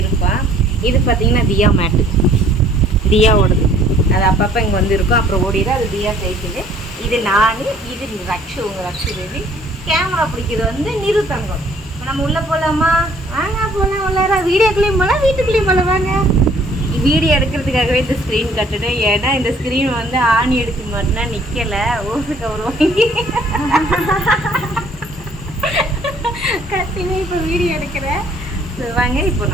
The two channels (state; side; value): normal; both; correlation 0.59